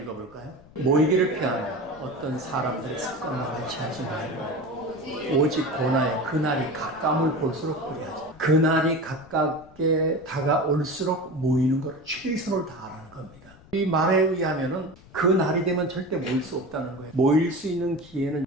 읽어볼까요? 모이기를 피하며 어떤 사람들의 습관과 같이 하지 말고 오직 고나의 그날이 가까움을 볼수록 그리하지. 그날이 가깝게 다가올수록 모이는 걸 최선을 다하라는 겁니다. 이 말에 의하면은 그 날이 되면 절대 모일 수 없다는 거예요. 모일 수 있는 기회는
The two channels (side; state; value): left; noise; rumble, 23 dB below the sound